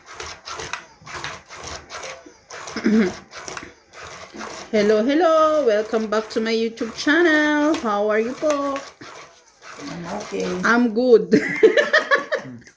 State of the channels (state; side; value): identical; both; correlation 1.00